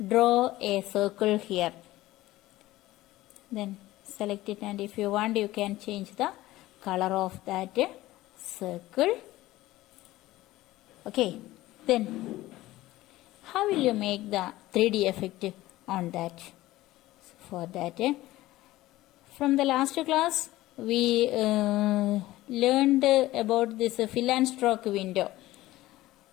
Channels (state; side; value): quieter; right; 16.9 dB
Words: draw a circle here. Then select it, and if you want you can change the color of that circle. Okay, then how will you make the 3D effect on that? For that, from the last class we learned about this fill and stroke window.